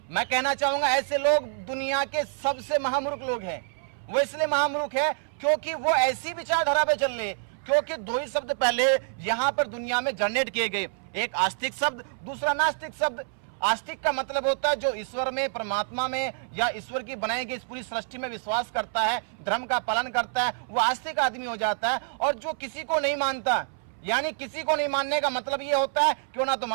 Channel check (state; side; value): silent; left; 60 dB below the other